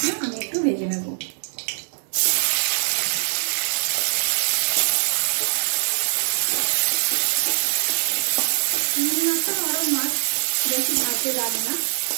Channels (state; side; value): silent; left; 62 dB below the other